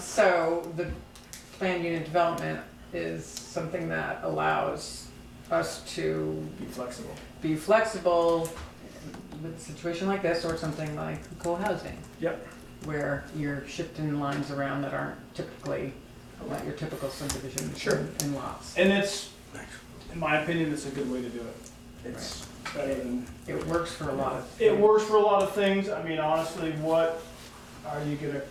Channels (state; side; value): identical; both; correlation 1.00